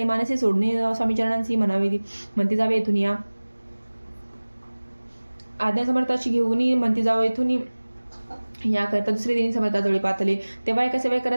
मानसी सोडणे स्वामीचरणांशी म्हणावे म्हणती जावे येथून या आज्ञा समर्थाची घेऊन म्हणती जावं येथून याकरता दुसरे दिनी समर्थाजवळी पातले तेव्हा एका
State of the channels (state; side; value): inverted; both; correlation -1.00